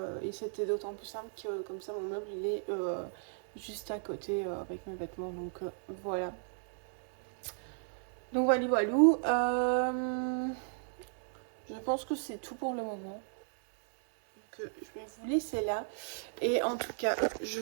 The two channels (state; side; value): silent; left; digital silence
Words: c'était d'autant plus simple que comme ça, mon meuble, il est juste à côté avec mes vêtements. Donc voilà. Donc voilà, voilou. Je pense que c'est tout pour le moment. Donc, je vais vous laisser là. Et en tout cas, je